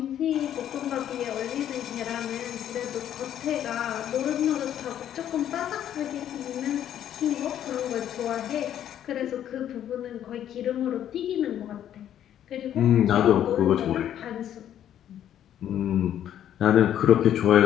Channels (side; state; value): right; quieter; 10.6 dB